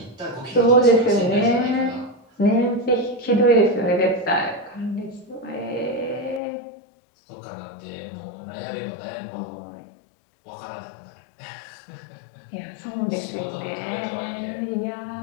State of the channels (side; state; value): right; drops out; at 6.4 s